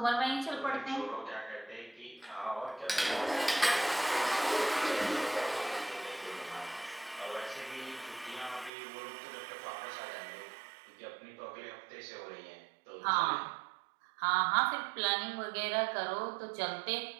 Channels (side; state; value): left; drops out; at 8.7 s